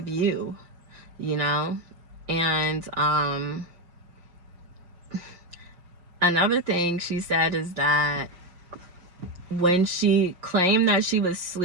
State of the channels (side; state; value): left; late; 5.6 ms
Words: you, you know. And another thing she said is that when she claimed that she